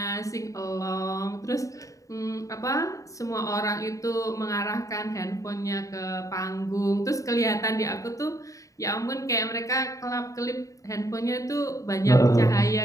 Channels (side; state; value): right; late; 0.16 ms